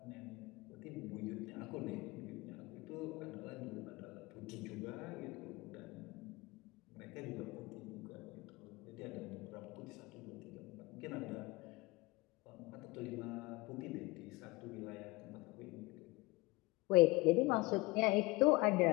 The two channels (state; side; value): quieter; right; 22.8 dB